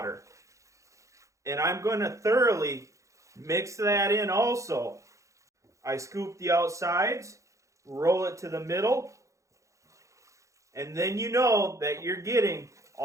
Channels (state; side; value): late; left; 0.15 ms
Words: And I'm going to thoroughly mix that in also. I scoop the outsides, roll it to the middle, and then you know that you're getting